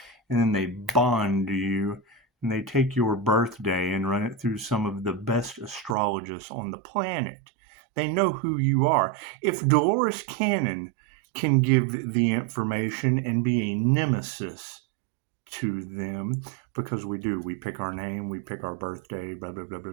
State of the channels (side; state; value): left; drops out; at 6.0 s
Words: and then they bond you. And they take your birthday and run it through some of the best astrologists on the planet. They know who you are. If Dolores Cannon can give the information and be a nemesis to them, because we pick our name, we pick our birthday, blah, blah, blah, blah,